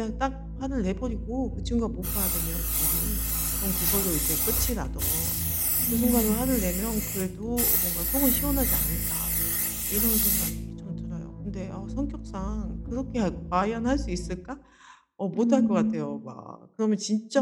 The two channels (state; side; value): identical; both; correlation 1.00